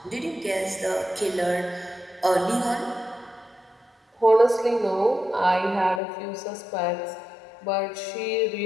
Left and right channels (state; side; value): drops out; right; at 6.0 s